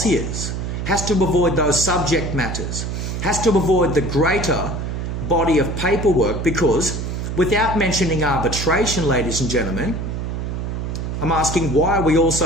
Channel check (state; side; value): noise; right; hum, 4 dB below the sound